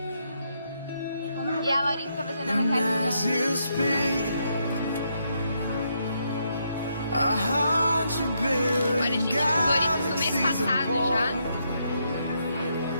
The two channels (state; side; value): inverted; both; correlation -0.78